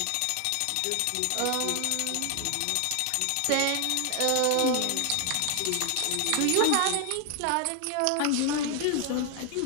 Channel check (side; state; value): both; different; correlation 0.00